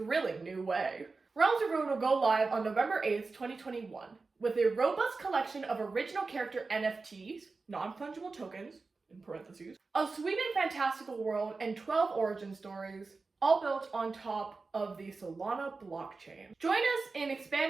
new way. Realms of Ruin will go live on November 8th, 2021, with a robust collection of original character NFTs, non-fungible tokens, in parentheses, a sweeping fantastical world, and 12 origin stories, all built on top of the Solana blockchain. Join us in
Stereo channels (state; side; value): quieter; left; 4.0 dB